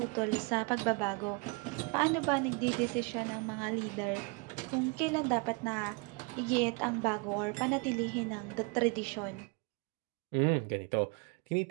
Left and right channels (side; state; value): left; quieter; 31.3 dB